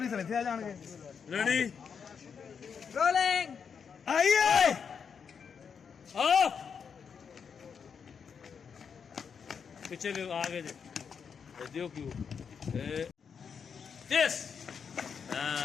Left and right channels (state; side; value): quieter; right; 6.6 dB